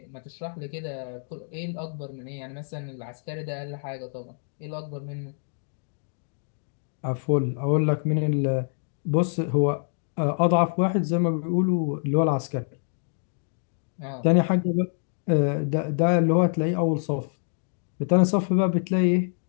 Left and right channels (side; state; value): right; silent; digital silence